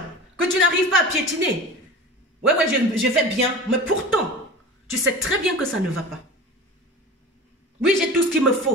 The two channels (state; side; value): normal; both; correlation 0.35